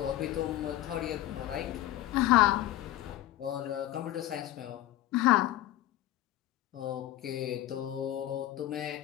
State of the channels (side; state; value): right; quieter; 14.3 dB